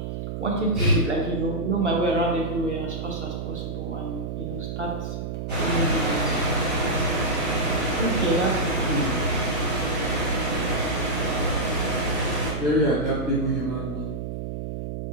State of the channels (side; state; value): right; noise; hum, 5 dB below the sound